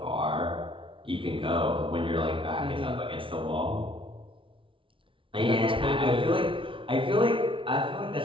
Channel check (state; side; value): late; left; 0.25 ms